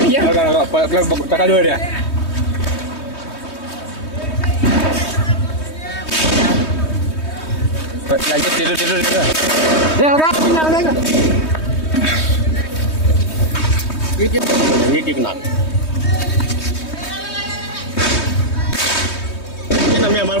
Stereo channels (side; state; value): right; late; 3.2 ms